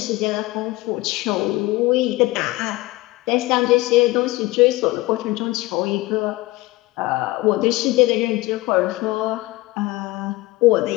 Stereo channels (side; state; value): right; quieter; 19.7 dB